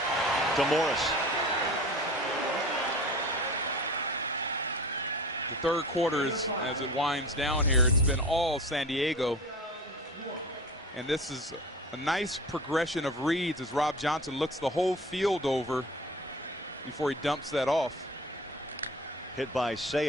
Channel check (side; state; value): both; normal; correlation 0.38